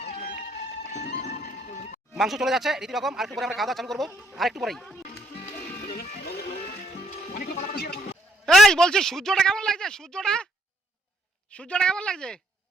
মাংস চলে যাচ্ছে রীতি রকম। আর একটু পরে আমরা খাওয়া দাওয়া চালু করবো, আর একটু পরেই। এই বলছি সূর্যটা কেমন লাগছে? সূর্যটা সূর্যটা কেমন লাগছে?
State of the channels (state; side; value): normal; both; correlation 0.70